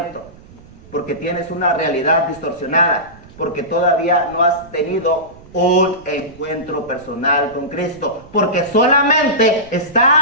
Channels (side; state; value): right; noise; rumble, 22 dB below the sound